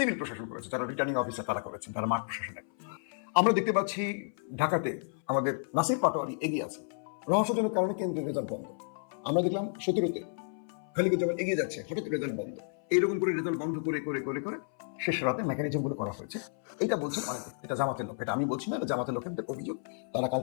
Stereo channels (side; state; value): right; silent; 57 dB below the other